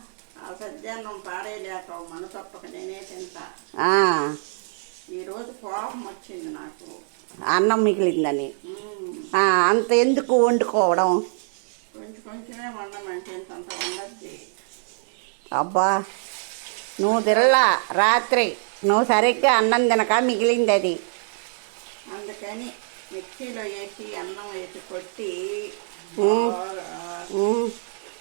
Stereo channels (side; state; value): left; silent; 62 dB below the other